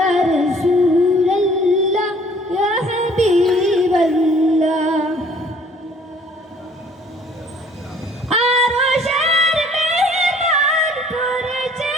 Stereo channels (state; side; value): normal; both; correlation 0.56